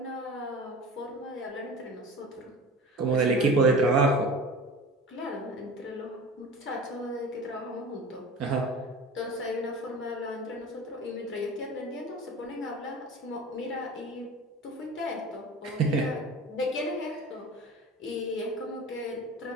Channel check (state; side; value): normal; both; correlation 0.35